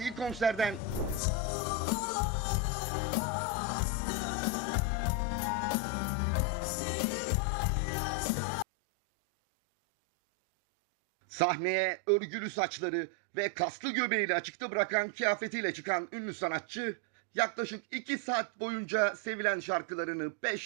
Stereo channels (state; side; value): drops out; left; at 8.7 s